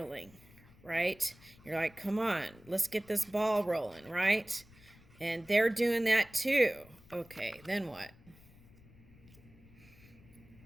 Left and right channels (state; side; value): noise; left; rumble, 24 dB below the sound